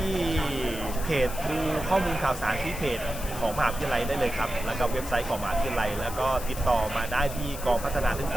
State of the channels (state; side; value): noise; left; hiss, 11 dB below the sound